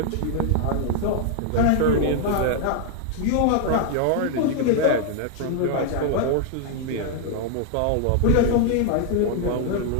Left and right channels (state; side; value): different; both; correlation 0.00